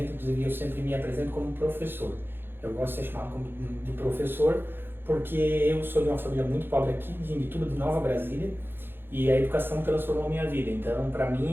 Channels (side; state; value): left; late; 0.10 ms